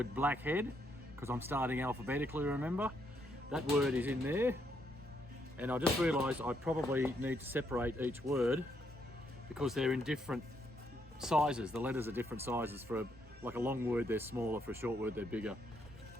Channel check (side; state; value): both; normal; correlation 0.75